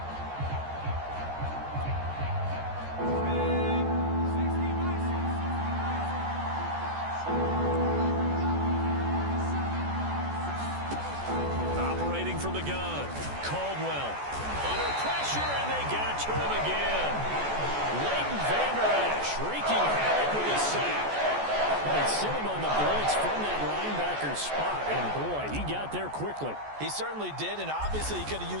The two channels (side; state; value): left; late; 14 ms